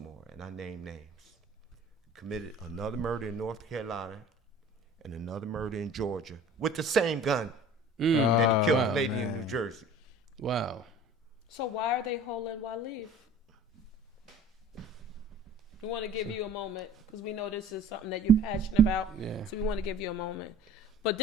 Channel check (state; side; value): normal; both; correlation 0.46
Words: and I name names, committed another murder in North Carolina and another murder in Georgia with the same gun that he killed the lady in New Jersey. Wow. So why are they holding Waleed? We want to give you a moment because we know this is something that you're passionate about. Yeah. So we want to give you a moment. But